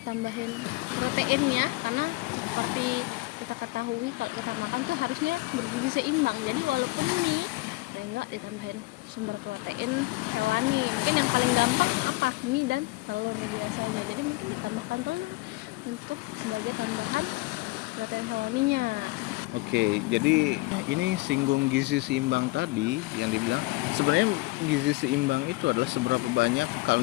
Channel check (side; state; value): right; quieter; 22.3 dB